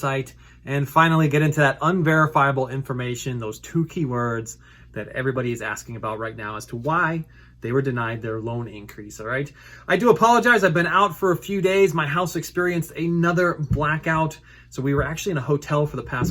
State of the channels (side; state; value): both; identical; correlation 1.00